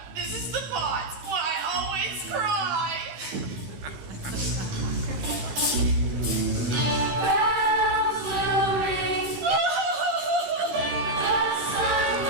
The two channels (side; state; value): left; late; 13 ms